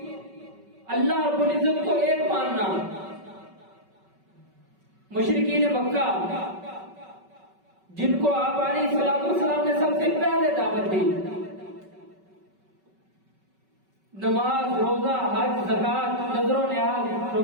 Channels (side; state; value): left; late; 5.3 ms